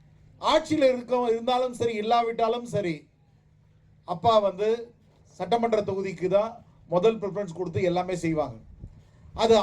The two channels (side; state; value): both; identical; correlation 1.00